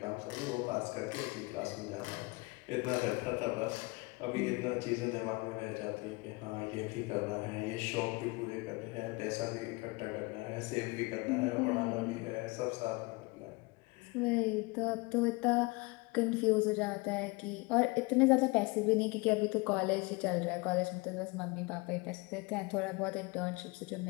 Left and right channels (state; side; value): quieter; right; 25.6 dB